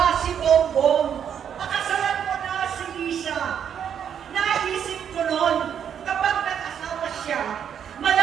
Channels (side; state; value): left; quieter; 8.5 dB